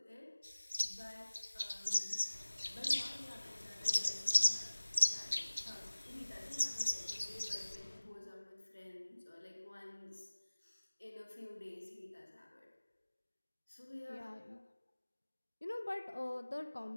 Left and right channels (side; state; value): both; inverted; correlation -1.00